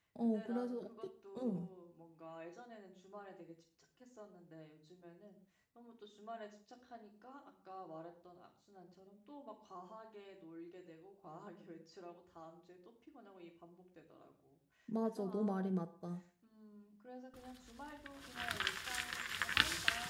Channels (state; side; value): identical; both; correlation 1.00